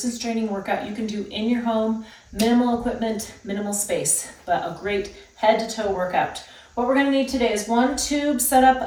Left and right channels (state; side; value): identical; both; correlation 1.00